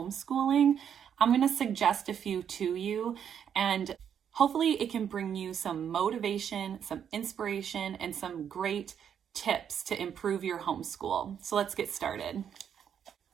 I'm going to suggest a few to you, and hopefully it can bring you some motivation, some inspiration, and some great tips to improve your homeschool. So let's get started.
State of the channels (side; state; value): left; quieter; 8.4 dB